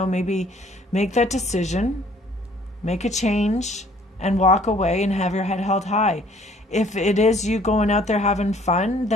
maybe make that decision, make a change, and walk away and have your head held high. If it is you going out there having fun,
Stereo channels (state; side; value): normal; both; correlation 0.58